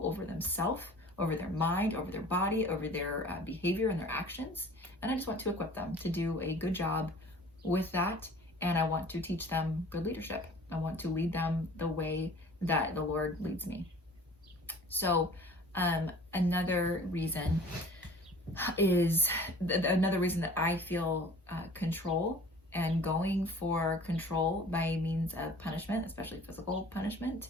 over themselves, over their mind, over their body, over their behavior and their actions. And I just want to equip them to do a good job with that. And I want to teach them good leadership. I want to lead them the way that the Lord leads me. So another reason that I feel control, and going for control by means of punishment, especially physical punishment,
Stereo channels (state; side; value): normal; both; correlation 0.46